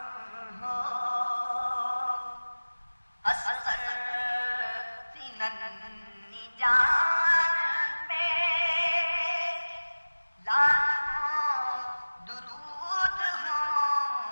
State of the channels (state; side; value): inverted; both; correlation -1.00